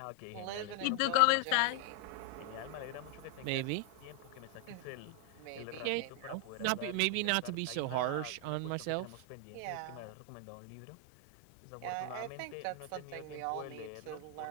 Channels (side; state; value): both; different; correlation 0.00